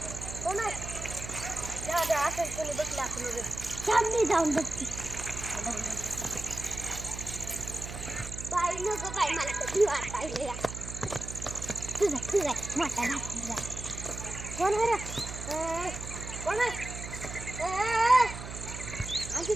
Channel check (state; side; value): noise; right; hum, 9 dB below the sound